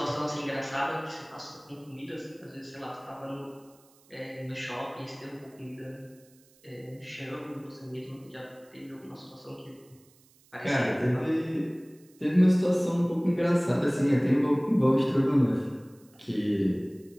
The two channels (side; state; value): right; noise; hiss, 30 dB below the sound